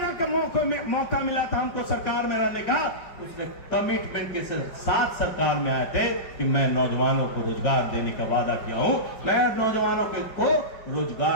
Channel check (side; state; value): right; late; 5.0 ms